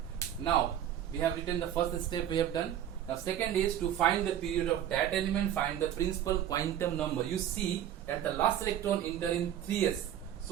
Now, we have written the first step we have done. Now, second is to find the period of that element, find the principal quantum number. You see that the last electron enter in 3s.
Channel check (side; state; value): left; quieter; 10.7 dB